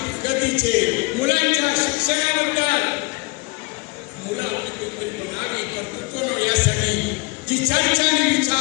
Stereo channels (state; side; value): quieter; right; 27.6 dB